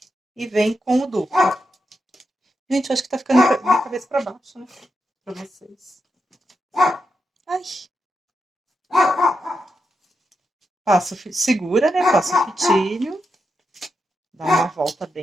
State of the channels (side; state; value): both; normal; correlation 0.86